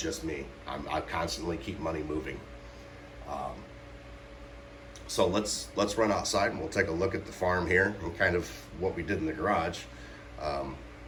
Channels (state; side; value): identical; both; correlation 1.00